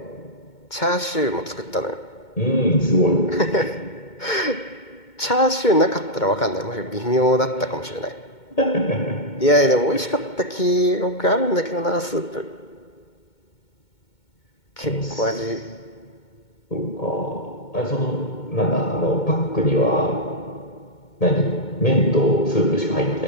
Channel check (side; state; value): right; late; 2.2 ms